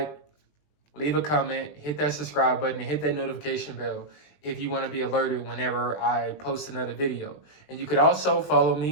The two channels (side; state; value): right; late; 20 ms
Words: leave a comment, hit that subscribe button, and hit that notification bell if you want to be alerted whenever I post another video. And you could also follow